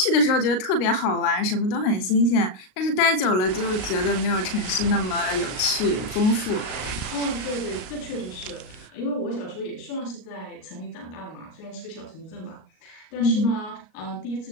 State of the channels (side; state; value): right; late; 38 ms